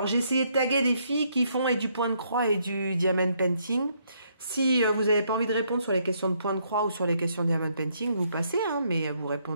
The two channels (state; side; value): inverted; both; correlation -0.72